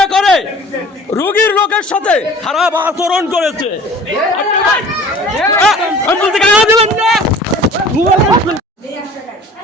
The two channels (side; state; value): both; normal; correlation 0.46